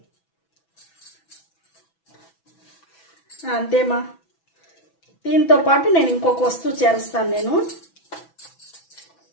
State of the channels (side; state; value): right; late; 6.1 ms